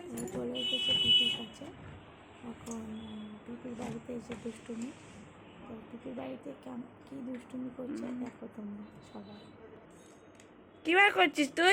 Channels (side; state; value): both; identical; correlation 1.00